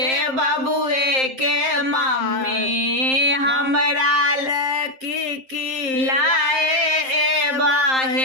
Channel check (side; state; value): left; late; 7.6 ms